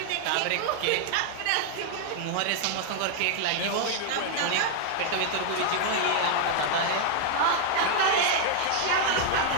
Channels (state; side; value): different; both; correlation 0.00